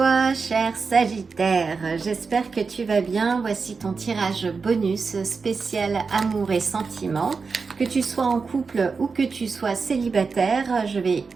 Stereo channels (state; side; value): quieter; left; 4.8 dB